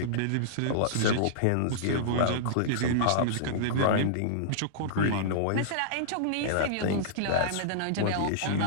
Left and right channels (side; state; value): both; different; correlation -0.02